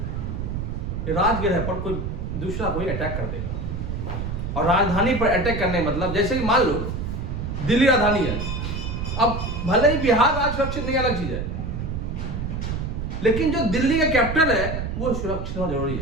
राजगृह पर कोई दूसरा कोई अटैक कर देगा। और राजधानी पर अटैक करने मतलब जैसे कि मान लो दिल्ली राजधानी है, अब भले ही बिहार राज्य सुरक्षित नहीं, अलग चीज है, लेकिन जो दिल्ली का कैपिटल है वो सुरक्षित होना जरूरी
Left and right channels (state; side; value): noise; right; rumble, 4 dB below the sound